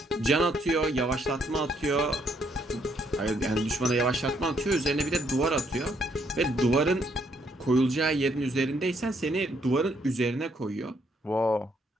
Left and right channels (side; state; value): both; normal; correlation 0.71